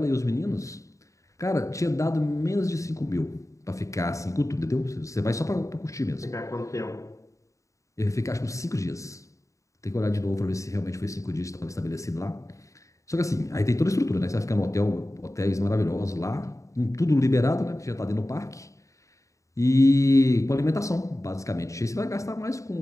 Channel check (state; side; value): late; right; 0.15 ms